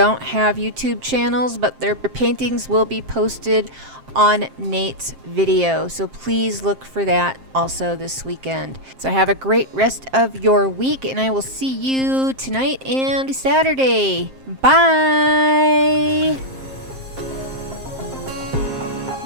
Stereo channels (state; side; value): late; left; 7.6 ms